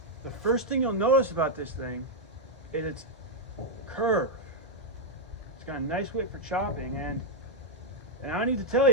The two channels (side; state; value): both; normal; correlation -0.02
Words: The first thing you'll notice about this thing is its curve. It's got a nice width for chopping, and I need to tell